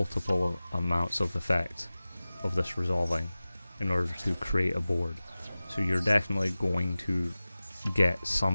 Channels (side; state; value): both; inverted; correlation -0.97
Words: amounts of effect of this resolving in order to create a board. So you're definitely going to get